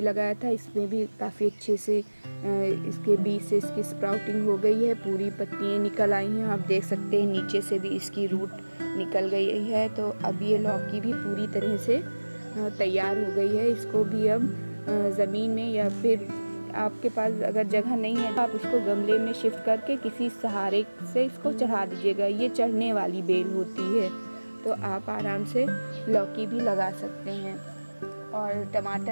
लगाया था, इसमें भी काफ़ी अच्छे से इसके बीज से इसकी स्प्राउटिंग हो गई है, पूरी पत्तियाँ निकल आई हैं। आप देख सकते हैं नीचे से भी इसकी रूट निकल गई है। तो अब ये लौकी भी पूरी तरह से तैयार हो गई है। इसको भी अब ज़मीन में या फिर आपके पास अगर जगह नहीं है तो आप इसको गमले में शिफ्ट करके किसी सहारे से इसको चढ़ा दीजिएगा। ये चढ़ने वाली बेल होती है, तो आप आराम से लौकी भी लगा सकते हैं। और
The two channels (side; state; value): both; inverted; correlation -1.00